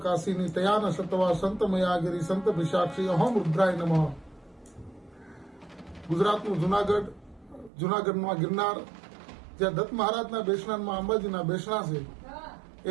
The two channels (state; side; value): drops out; left; at 7.7 s